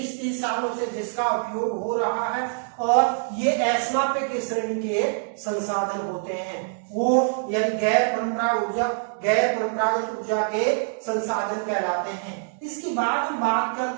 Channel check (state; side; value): silent; left; digital silence